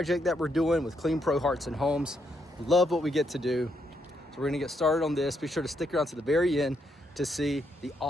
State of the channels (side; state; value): both; normal; correlation 0.77